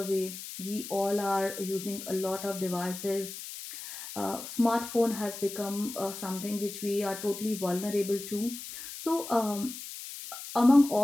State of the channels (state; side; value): noise; left; hiss, 10 dB below the sound